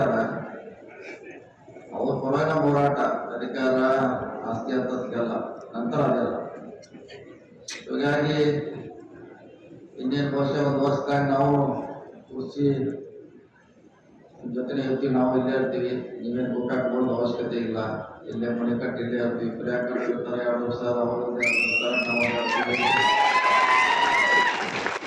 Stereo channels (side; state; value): both; identical; correlation 1.00